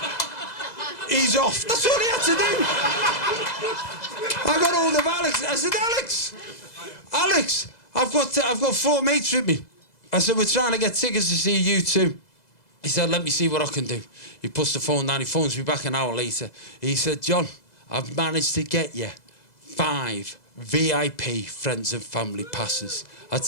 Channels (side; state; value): right; late; 2.0 ms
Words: He's off. That's all he had to do. I got hold of Alex. I said, Alex, I've got 4 mates with me. I said, we're trying to get tickets to see U2. He said, let me see what I can do. He puts the phone down. He phones me back an hour later. He said, John, I've managed to get you 5 VIP friends and family passes. I